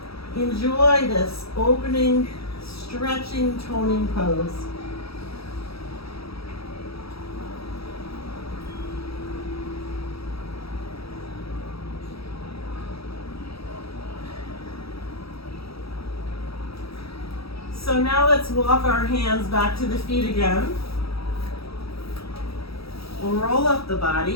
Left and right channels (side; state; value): right; late; 0.77 ms